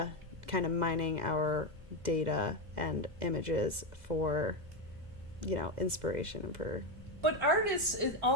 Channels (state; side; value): late; left; 2.0 ms